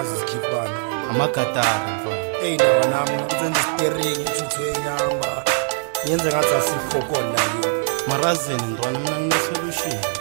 sikhipana. Amagatari mfana. Lawa nami ngizenza steering ithuthu enyamba. Yenze ngathi asikhokola la. Marazini ntwana mina ngine-solution.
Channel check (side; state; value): left; silent; digital silence